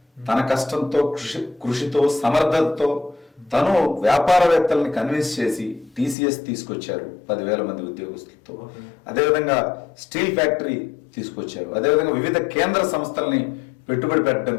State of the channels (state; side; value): drops out; right; at 6.2 s